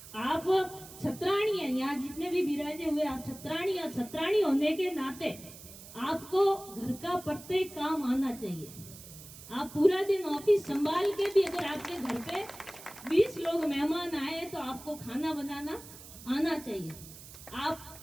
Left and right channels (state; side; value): noise; right; hiss, 16 dB below the sound